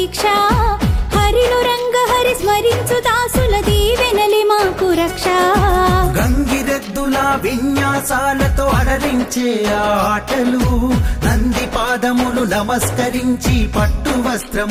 హరిలో రంగ హరి స్మరించు దాసుల దీవెనలి మాకు రక్ష గంగిరెద్దుల విన్యాసాలతో అలరించే ఆటలు నంది పాదములు నమస్కరించి పట్టు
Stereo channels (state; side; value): identical; both; correlation 1.00